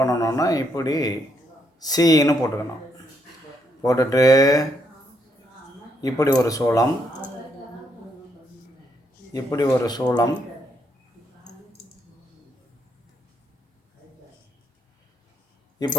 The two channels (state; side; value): normal; both; correlation 0.75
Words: இப்படி சீன்னு போட்டுக்கணும். போட்டுட்டு இப்படி ஒரு சூளம், இப்படி ஒரு சூளம்,